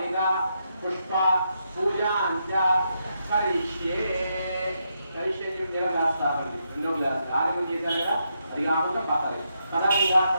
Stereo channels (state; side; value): inverted; both; correlation -0.81